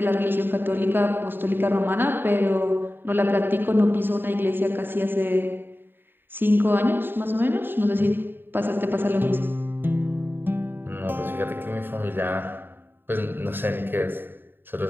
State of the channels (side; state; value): left; late; 0.097 ms